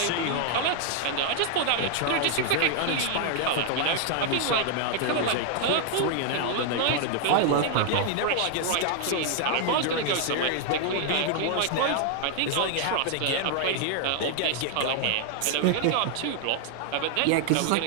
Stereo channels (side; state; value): both; different; correlation 0.00